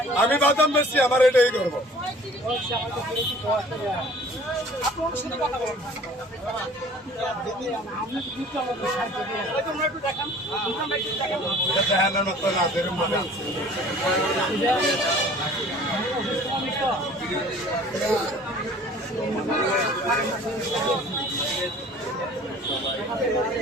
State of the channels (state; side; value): normal; both; correlation 0.49